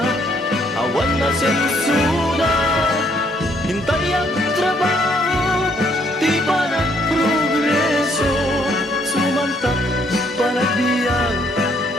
awan na sensura hintay ang trabaho, di pa nagprogreso. Sumantak panagbiag,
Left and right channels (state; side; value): normal; both; correlation 0.68